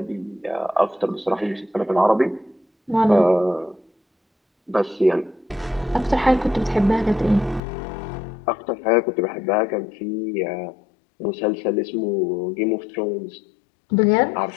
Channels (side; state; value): right; drops out; at 7.6 s